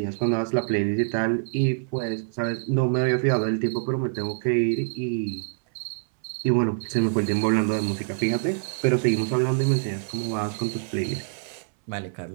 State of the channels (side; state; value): left; silent; 61 dB below the other